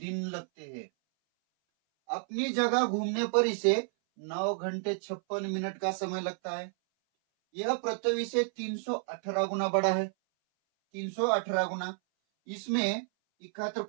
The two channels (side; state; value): left; silent; 57 dB below the other